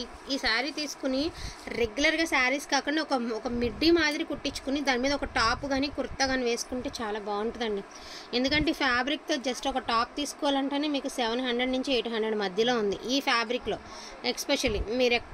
ఈ శారీ తీసుకుని రెగ్యులర్గా శారీస్ కాకుండా ఒక మిడ్డీ మాదిరి కుట్టించుకుని దాని మీద ఒక టాప్ కానీ కుర్తా కానీ వేసుకుంటే చాలా బాగుంటుందండి. ఎందుకంటే ఈ ఫ్యాబ్రిక్తో జస్ట్ ఒక టాప్ తీసుకోవాలంటేనే మీకు 700 నుంచి 800 మధ్యలో ఉంది ఈ ఫ్యాబ్రిక్లో. ఎస్పెషల్లీ మీరు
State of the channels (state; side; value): identical; both; correlation 1.00